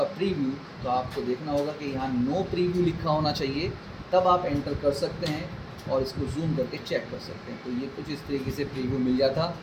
प्रीव्यू तो आपको देखना होगा कि यहाँ नो प्रीव्यू लिखा होना चाहिए, तब आप एंटर कर सकते हैं और इसको जूम करके चेक कर सकते हैं। तो ये कुछ इस तरीके से प्रीव्यू मिल जाता।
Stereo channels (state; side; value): identical; both; correlation 1.00